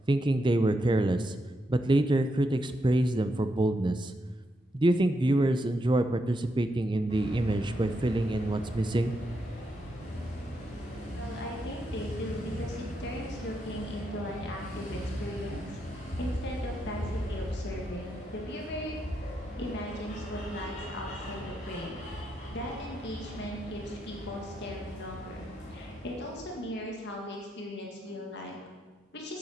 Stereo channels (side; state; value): both; normal; correlation 0.81